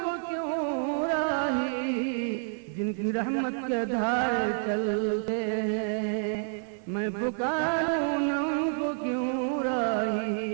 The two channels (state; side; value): silent; left; 59 dB below the other